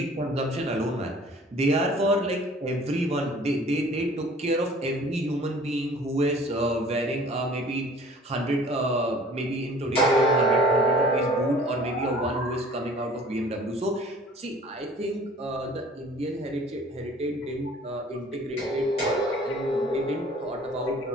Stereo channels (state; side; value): normal; both; correlation 0.50